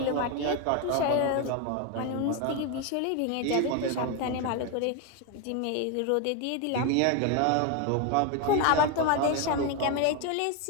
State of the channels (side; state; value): both; different; correlation 0.01